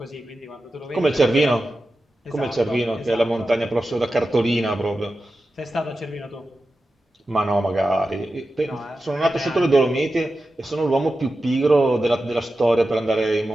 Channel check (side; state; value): both; normal; correlation 0.92